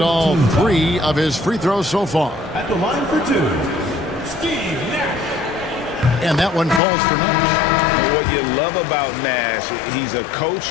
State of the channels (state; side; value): drops out; right; at 6.8 s